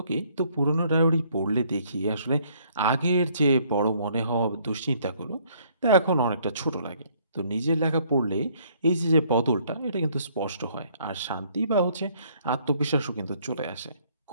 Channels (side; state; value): both; inverted; correlation -0.64